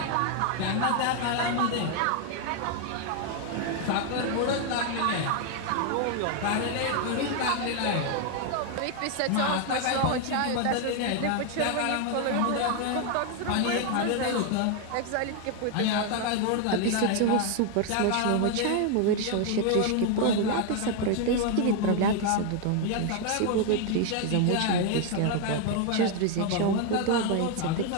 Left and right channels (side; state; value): both; different; correlation 0.01